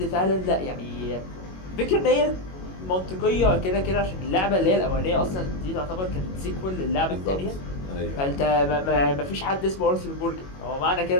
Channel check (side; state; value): right; late; 21 ms